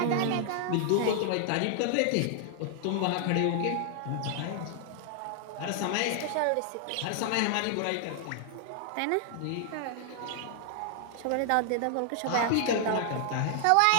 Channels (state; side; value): different; both; correlation 0.00